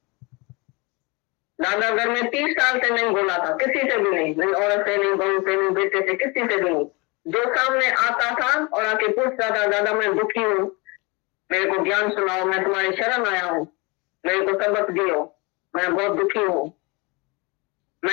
दादा घर में 30 साल से नहीं बोला था, किसी से भी नहीं, नहीं औरत से, नहीं बहू से, नहीं बेटे से, किसी से भी नहीं। जो सामने आता था और आके पूछता था, दादा मैं दुखी हूँ, मेरे को ज्ञान सुनाओ, मैं तुम्हारी शरण आया हूँ, मेरे को सबक दियो, मैं बहुत दुखी हूँ,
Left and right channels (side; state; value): right; quieter; 27.5 dB